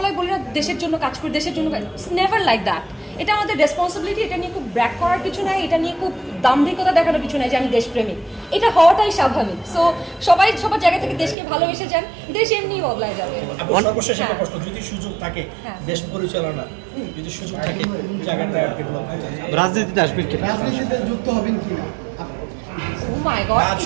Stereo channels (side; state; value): left; drops out; at 11.4 s